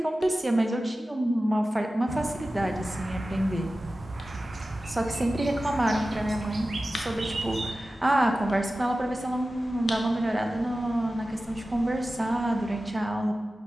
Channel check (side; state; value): both; normal; correlation 0.95